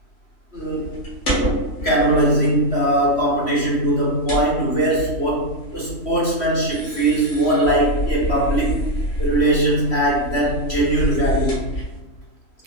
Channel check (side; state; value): right; late; 3.1 ms